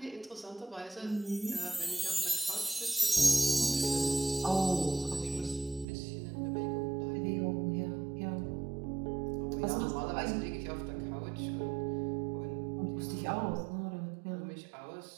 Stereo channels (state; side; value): drops out; left; at 5.9 s